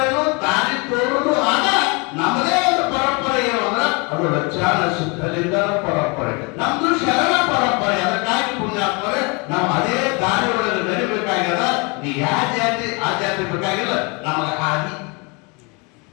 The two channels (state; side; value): quieter; right; 30.2 dB